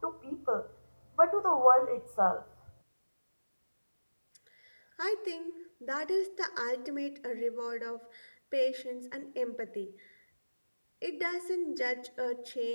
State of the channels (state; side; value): inverted; both; correlation -1.00